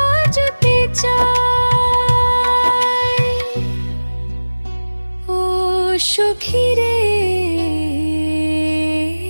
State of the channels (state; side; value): inverted; both; correlation -1.00